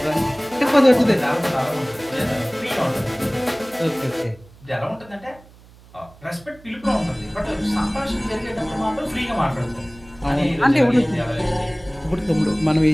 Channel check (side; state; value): right; noise; hum, 24 dB below the sound